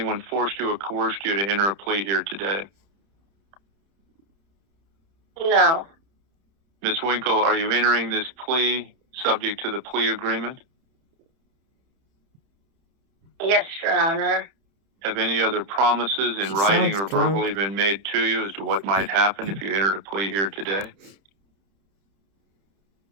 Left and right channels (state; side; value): late; left; 30 ms